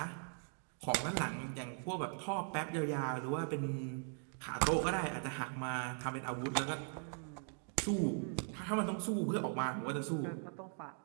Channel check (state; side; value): silent; left; 51 dB below the other